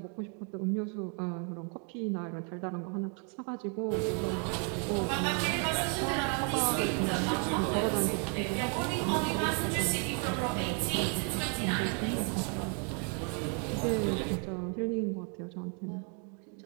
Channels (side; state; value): left; quieter; 39.3 dB